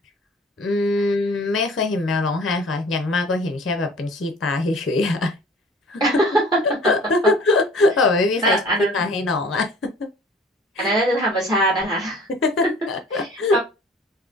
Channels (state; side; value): normal; both; correlation 0.49